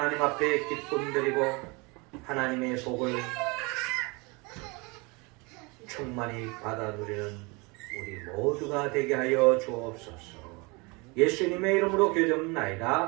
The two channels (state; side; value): quieter; left; 27.7 dB